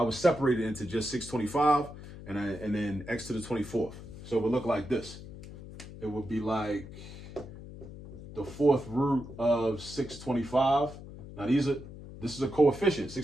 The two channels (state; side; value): noise; left; hum, 14 dB below the sound